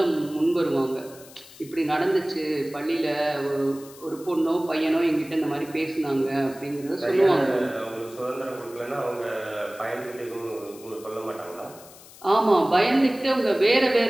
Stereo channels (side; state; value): left; noise; hiss, 20 dB below the sound